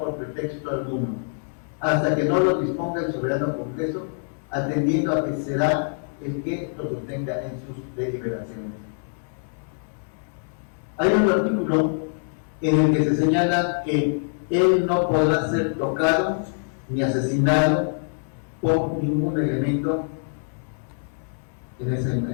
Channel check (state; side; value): silent; right; 60 dB below the other